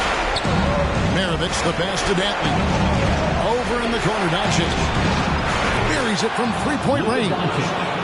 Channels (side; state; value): both; identical; correlation 1.00